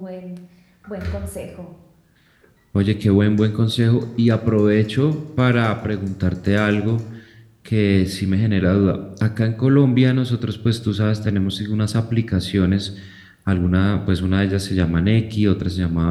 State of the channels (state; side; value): identical; both; correlation 1.00